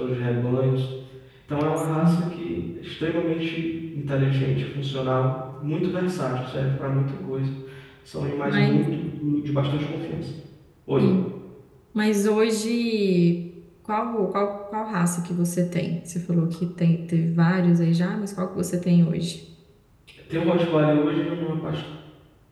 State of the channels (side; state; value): both; identical; correlation 1.00